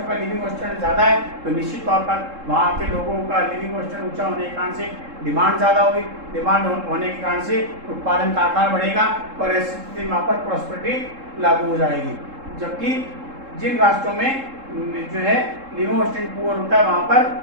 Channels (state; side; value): late; left; 3.7 ms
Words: का लिविंग स्टैंडर्ड ज़्यादा है तो निश्चित तौर पर वहाँ के लोगों का लिविंग स्टैंडर्ड ऊंचा होने के कारण से डिमांड ज़्यादा होगी, डिमांड होने के कारण से उत्पादन का आकार बढ़ेगा और ऐसी स्थिति में वहाँ पर प्रॉस्पेरिटी लागू हो जाएगी। जबकि जिन राष्ट्रों में जो है लिविंग स्टैंडर्ड पुअर होता है वहाँ पर